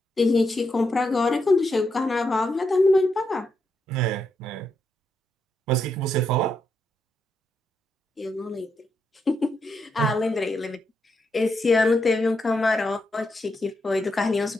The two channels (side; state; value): both; normal; correlation 0.81